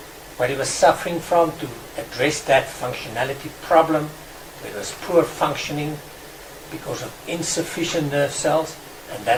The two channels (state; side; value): identical; both; correlation 1.00